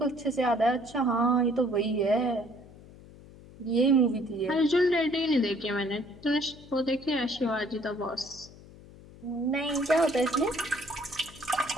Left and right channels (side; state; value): left; noise; hum, 20 dB below the sound